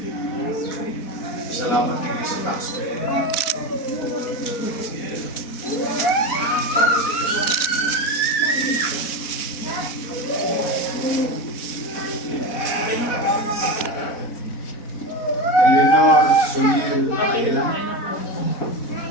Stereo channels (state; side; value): late; right; 4.1 ms